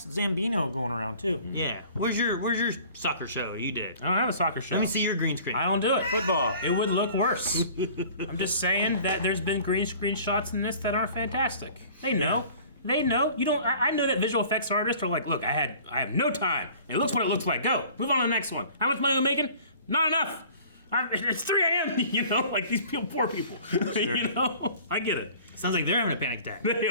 Zambino going around too. Yeah. Where's your soccer show you did? I don't have a soccer show. Let me see your green screen. I don't do it. Football. It would look worse. I'm just saying that there's been green screen shots in this that aren't fantastic. They know. Yeah. They know. You don't. I know that visual effects artists are like, look, I have no time. It looks what it looks like. Go. Move on to the next one. How much money are we making? Not enough. It's 3 a.m. You know, like these poor people. Sure. You know, I get it. Sounds like they're having a panic attack. They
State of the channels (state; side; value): inverted; both; correlation -0.48